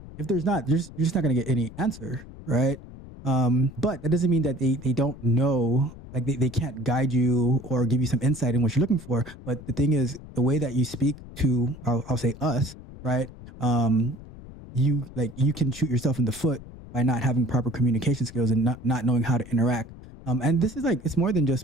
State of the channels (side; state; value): left; noise; rumble, 16 dB below the sound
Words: there's not, you're just not going to get any answer, right? But that doesn't mean that they don't know, like they can't guide you or give you some insight in what you're looking for. But the thing is, the way that you speak to, I'll say us, right? You can shoot yourself in the foot by not having proper communication skills and not knowing how to interact. And this is like, it's more than